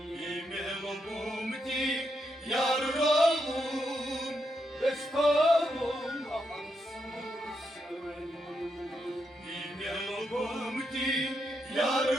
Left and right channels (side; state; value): both; normal; correlation 0.81